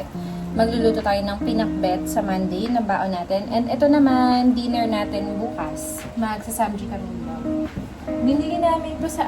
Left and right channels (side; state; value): both; identical; correlation 1.00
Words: magluluto tayo ng pinakbet sa Monday na baon natin. And ito naman, dinner natin bukas. Magsasamji kami nila. Binili namin ito sa